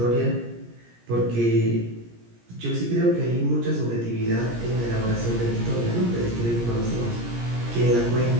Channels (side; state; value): left; late; 17 ms